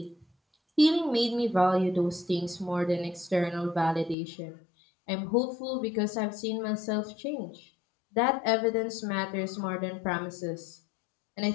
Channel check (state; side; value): drops out; right; at 4.2 s